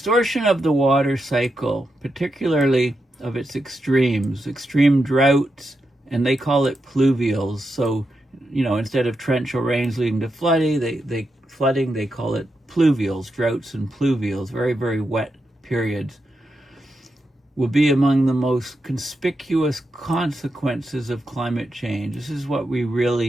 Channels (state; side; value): normal; both; correlation 0.86